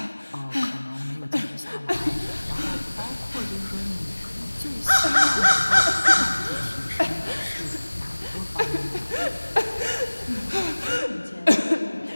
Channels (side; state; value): both; inverted; correlation -1.00